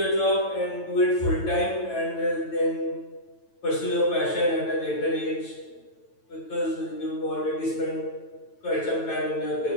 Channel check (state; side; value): late; right; 9.0 ms